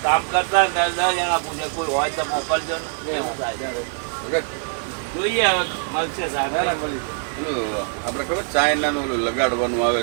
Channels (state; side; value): silent; left; 57 dB below the other